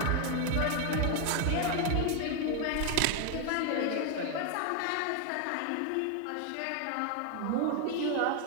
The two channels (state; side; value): different; both; correlation 0.01